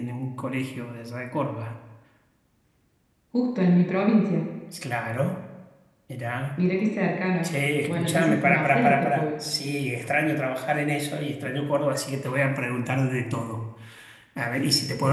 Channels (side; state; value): both; identical; correlation 1.00